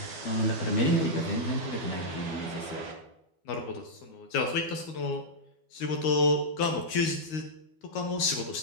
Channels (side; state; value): right; late; 13 ms